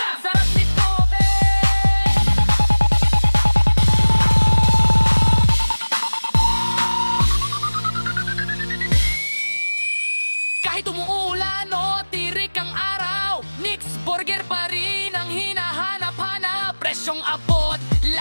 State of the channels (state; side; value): inverted; both; correlation -1.00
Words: Sarap nito, kahit umuulan o tirik ang araw, Nick's Burger pa rin ang hinahanap-hanap. Presyong abot,